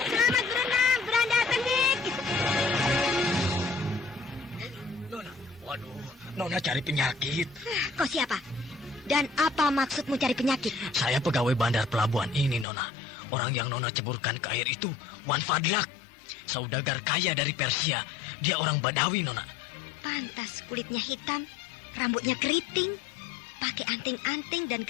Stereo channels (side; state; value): right; drops out; at 12.7 s